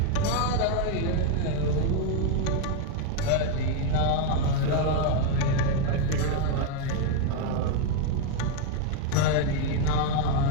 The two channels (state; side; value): different; both; correlation 0.01